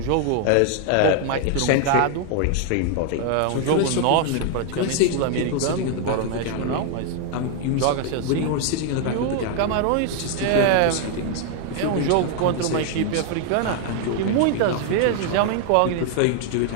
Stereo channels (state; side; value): different; both; correlation 0.00